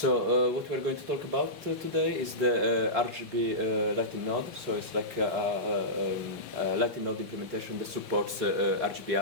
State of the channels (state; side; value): normal; both; correlation -0.16